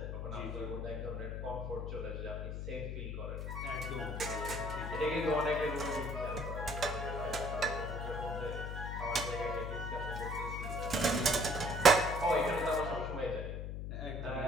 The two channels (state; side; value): noise; left; hum, 4 dB below the sound